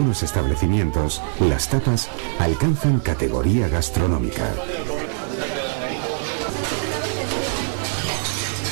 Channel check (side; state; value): left; silent; digital silence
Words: establecimientos, las tapas alcanzan categoría gastronómica.